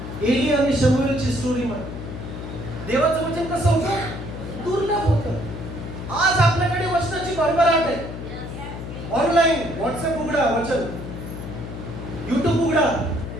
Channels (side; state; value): left; noise; hum, 9 dB below the sound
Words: एली आणि शमूएलची स्टोरी मध्ये देवाचं वचन कसं होतं? दुर्लभ होतं. आज आपल्याकडे वचनाची भरभराट आहे. ऑनलाईन व्हॉट्सअप उघडा, वचन. युट्यूब उघडा,